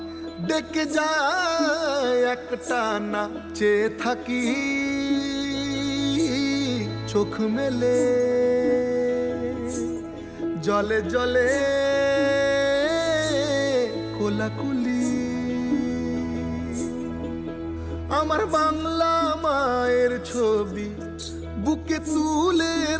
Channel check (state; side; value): identical; both; correlation 1.00